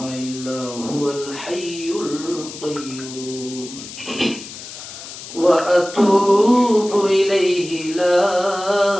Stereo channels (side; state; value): left; noise; hiss, 13 dB below the sound